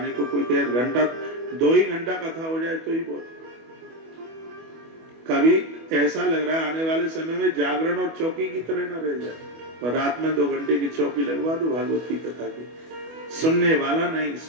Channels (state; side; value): late; left; 25 ms